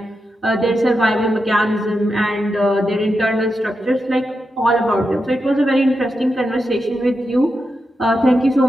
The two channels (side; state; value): both; normal; correlation 0.87